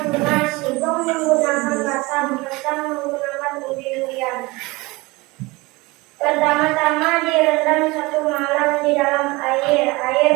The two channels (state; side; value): quieter; left; 23.2 dB